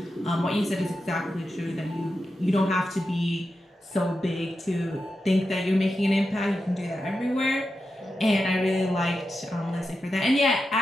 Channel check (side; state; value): both; normal; correlation 0.89